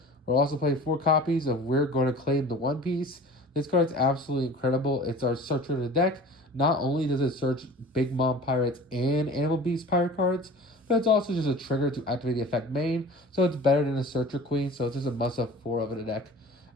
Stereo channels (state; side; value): normal; both; correlation 0.41